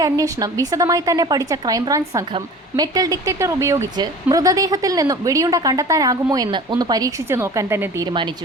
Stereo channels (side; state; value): both; normal; correlation 0.41